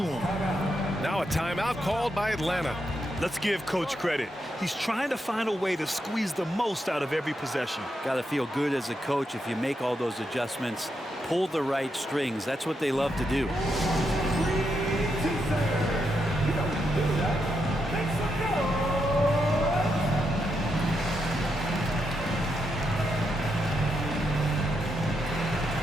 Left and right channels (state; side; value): normal; both; correlation 0.83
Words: Now a timeout called by Atlanta. Let's give Coach credit. He's trying to find a way to squeeze the most out of every possession. Got to feel good as a coach if you make all those adjustments, pull the right strings. That's what they love to do.